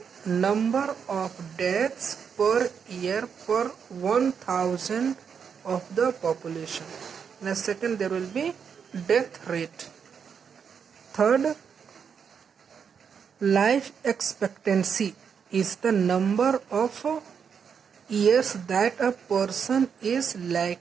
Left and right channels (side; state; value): left; quieter; 6.8 dB